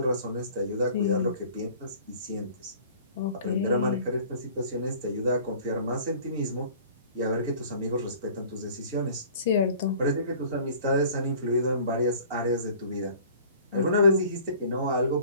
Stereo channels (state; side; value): inverted; both; correlation -0.49